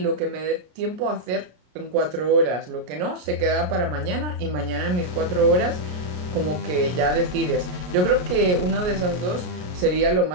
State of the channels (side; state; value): left; late; 33 ms